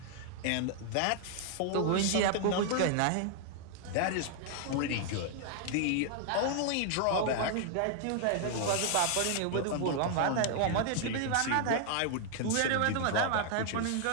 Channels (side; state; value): both; different; correlation 0.00